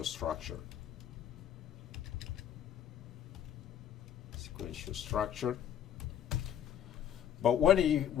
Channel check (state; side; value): quieter; right; 9.9 dB